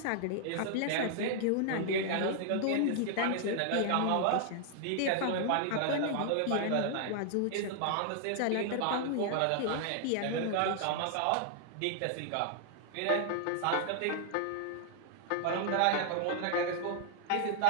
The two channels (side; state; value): both; different; correlation 0.00